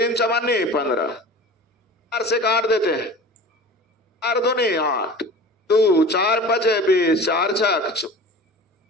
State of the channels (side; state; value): both; normal; correlation 0.37